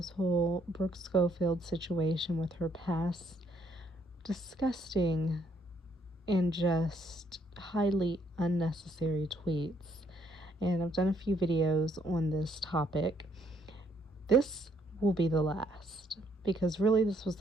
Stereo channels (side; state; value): both; normal; correlation 0.69